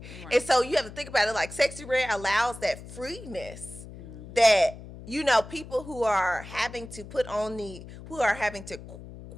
Right. And so you have to think about it like Sexy Red allows that freeness that people who are having to kind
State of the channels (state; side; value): noise; left; hum, 15 dB below the sound